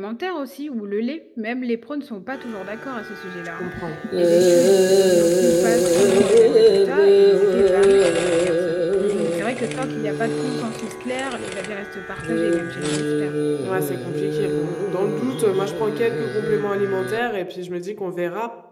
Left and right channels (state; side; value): identical; both; correlation 1.00